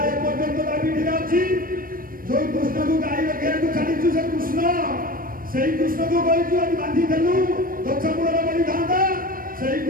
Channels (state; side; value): late; left; 0.41 ms